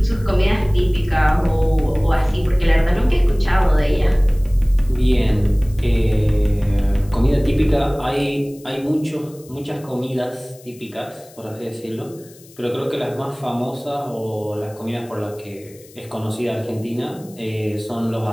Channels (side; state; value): left; noise; hiss, 24 dB below the sound